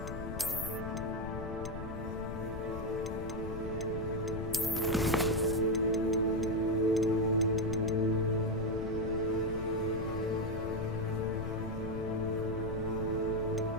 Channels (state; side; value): noise; left; rumble, 7 dB below the sound